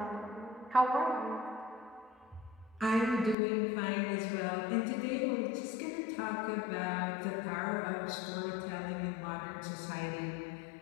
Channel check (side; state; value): right; drops out; at 3.4 s